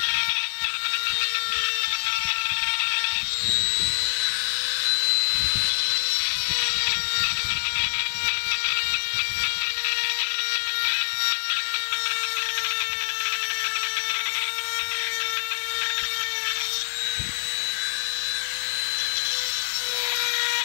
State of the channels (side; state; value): right; silent; digital silence